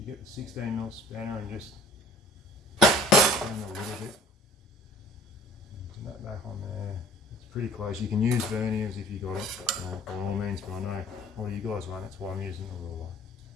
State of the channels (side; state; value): both; normal; correlation 0.51